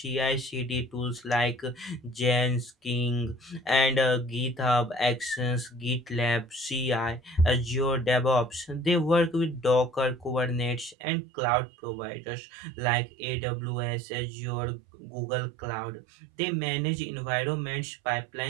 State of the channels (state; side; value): drops out; left; at 11.0 s